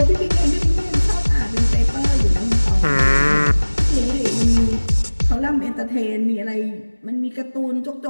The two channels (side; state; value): both; inverted; correlation -1.00